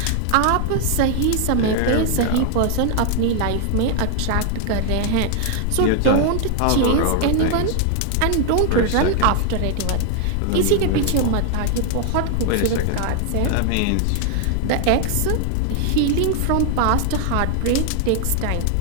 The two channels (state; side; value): different; both; correlation 0.00